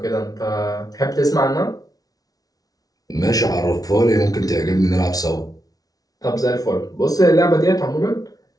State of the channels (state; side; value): late; right; 0.18 ms